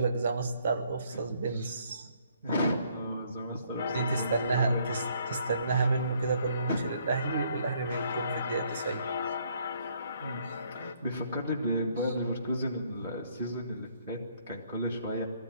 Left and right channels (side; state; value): both; inverted; correlation -0.67